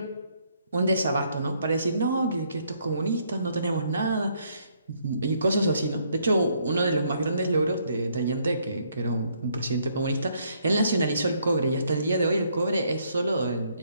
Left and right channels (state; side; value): inverted; both; correlation -0.69